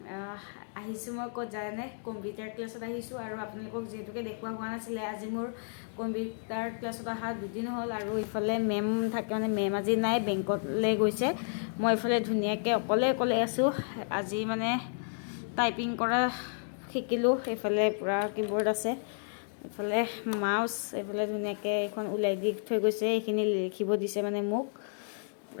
আহিছোঁ মই ক'ত জানে কম্পিউটাৰ ক্লাছত আহিছোঁ আৰু আপোনালোকক যিহেতুকে দেখুওৱা হোৱা নাছিলে আজি মোৰ কম্পিউটাৰ ক্লাছত অহা দুদিন হ'ল আৰু ইফালে মেম থাকে মানে মেম আজি নাই বেংকলৈ গৈছে মই ইফালে ধুনীয়াকৈ অকলে আছোঁ আজি মানে টাইপিং কৰা শিকিলোঁ এইফালে পূৰা কিবৰ্ড আছে এফালে মাউস এফালে ধুনীয়াকৈ এখন ওলাই দি থৈ গৈছে এইখিনি লিখিব দিছে মানে মোক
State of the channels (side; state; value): right; silent; digital silence